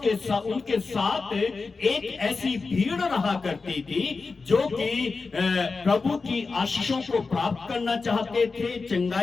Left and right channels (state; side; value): quieter; right; 4.3 dB